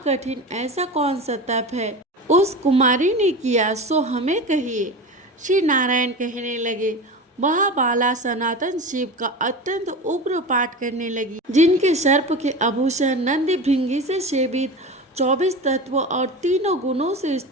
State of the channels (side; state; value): both; normal; correlation 0.28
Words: ऐसा कौन सा तप है उस कुमारी ने किया, सो हमें कहिए। श्री नारायण कहने लगे, वह बाला सनातन शिव का अत्यंत उग्र पाठ करने लगी, जिनके सर्प के आभूषण नंदी भृंगी से सेवित 24 तत्वों और तीनों गुणों से